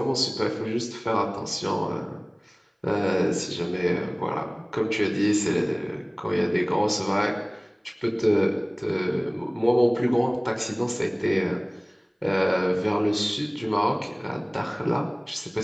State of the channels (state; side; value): identical; both; correlation 1.00